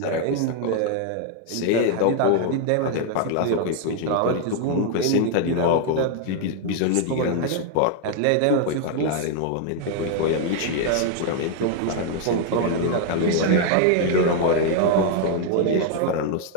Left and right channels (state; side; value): different; both; correlation 0.00